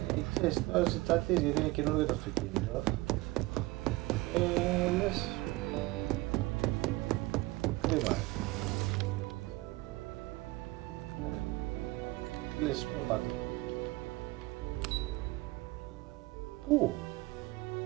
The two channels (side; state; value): left; quieter; 21.0 dB